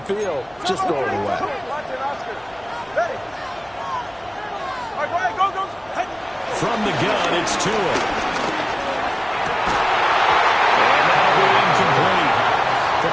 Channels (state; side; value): noise; left; hum, 30 dB below the sound